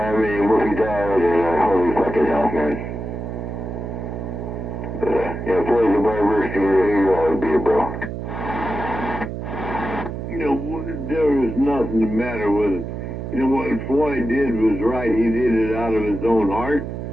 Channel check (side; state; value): right; noise; hum, 6 dB below the sound